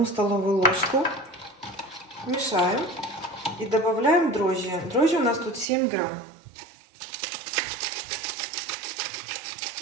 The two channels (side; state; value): left; drops out; at 5.7 s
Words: столовую ложку, мешаем и добавляем дрожжи. Дрожжи у нас тут 7 грамм.